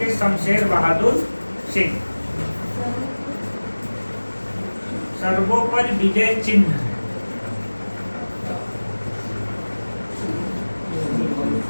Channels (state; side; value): inverted; both; correlation -1.00